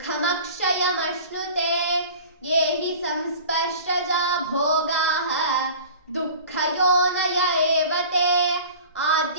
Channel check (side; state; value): both; inverted; correlation -0.41